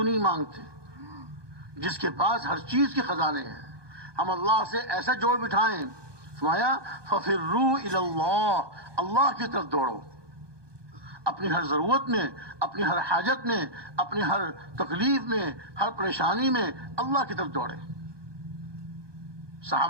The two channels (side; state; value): left; late; 1.2 ms